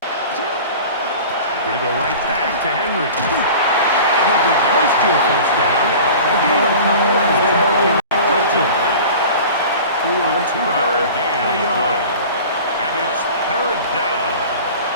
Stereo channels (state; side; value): inverted; both; correlation -0.39